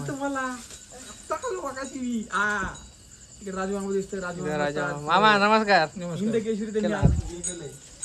तुम्हाला राजा मामा नमस्कार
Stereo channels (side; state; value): both; identical; correlation 1.00